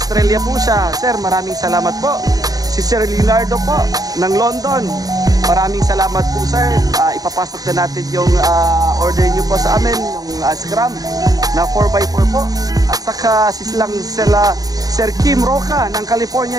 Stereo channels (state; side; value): late; left; 0.18 ms